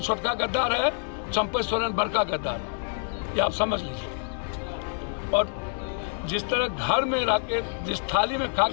गद्दार है, चंपई सोरेन बड़का गद्दार है, ये आप समझ लीजिए। और जिस तरह घर में रह के जिस थाली में खा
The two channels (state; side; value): silent; right; digital silence